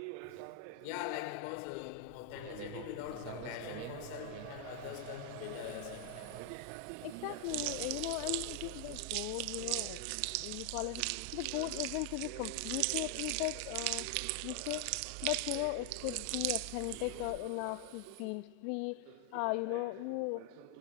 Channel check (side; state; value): both; different; correlation 0.00